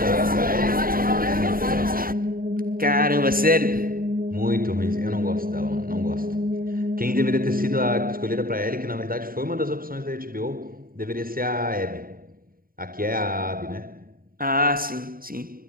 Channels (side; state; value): left; late; 0.42 ms